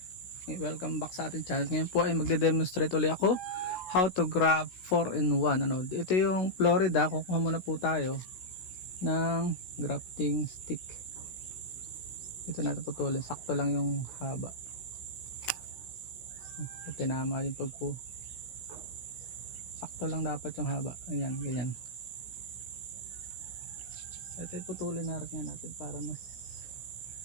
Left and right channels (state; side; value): late; right; 16 ms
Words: Welcome back sa ating channel. Ngayon po ay magde-demonstrate ulit ako how to grab 4-in-1. Ito yung Florida. Kukuha muna po tayo ng grafting stick. Ito natin putulin. Sakto lang yung haba. Tinama yung pagpo. Sakto lang dapat yung haba. Ayan, ganyan. Ito putulin natin para mas